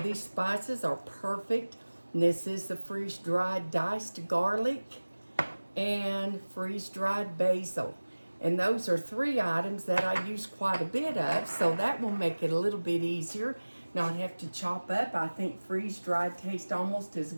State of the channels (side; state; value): both; inverted; correlation -1.00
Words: spices are perfect. And this is the freeze-dried diced garlic and freeze-dried basil. And those are three items that I use quite a bit of, so that will make it a little bit easier. Not have to chop up. I think freeze-dried tastes almost as